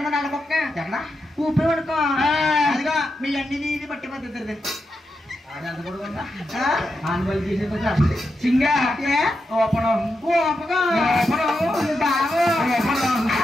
నల్లకొక్క ఎక్కడ ఊపి పడుకో అదిగా మీ అన్ని ఇది పట్టి పద్ధతి సింగా ఓపనం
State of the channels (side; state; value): both; normal; correlation 0.86